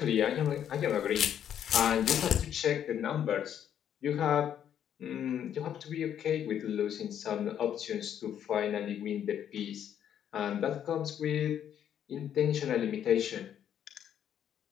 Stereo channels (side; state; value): right; quieter; 9.6 dB